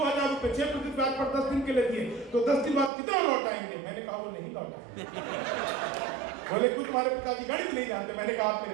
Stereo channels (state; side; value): drops out; left; at 2.9 s